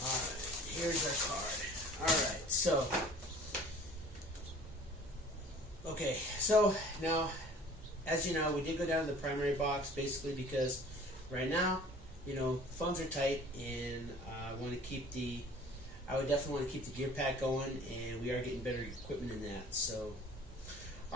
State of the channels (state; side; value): normal; both; correlation 0.48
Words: Here's our card. Alright, so now, as you know, we did go down to the primary box basically because right now, funds are tight, and I would definitely want to keep the gear pack going, and we are getting better equipment in that. So,